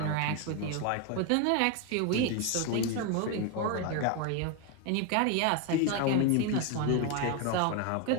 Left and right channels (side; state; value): both; different; correlation 0.02